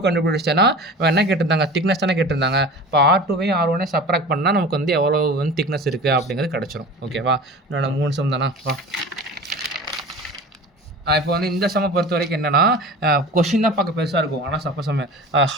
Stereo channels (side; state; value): both; normal; correlation 0.37